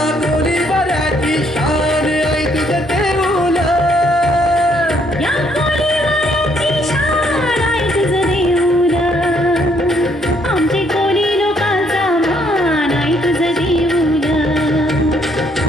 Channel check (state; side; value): normal; both; correlation 0.69